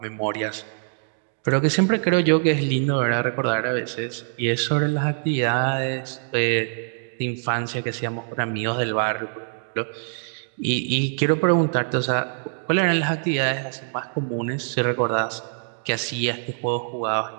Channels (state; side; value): silent; left; digital silence